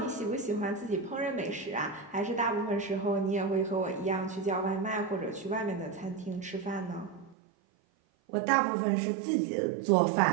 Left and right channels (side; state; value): left; drops out; at 7.4 s